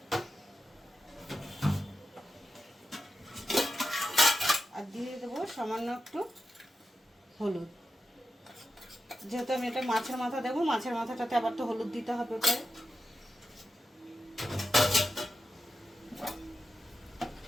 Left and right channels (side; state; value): both; normal; correlation 0.90